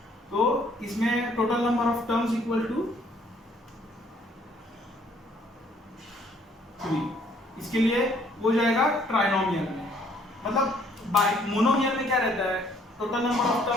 तो इसमें total number of terms equal to 3। इसके लिए वो जाएगा ट्राइनोमियल में, मतलब मोनोमियल में क्या रहता है, टोटल नंबर ऑफ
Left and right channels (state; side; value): normal; both; correlation 0.63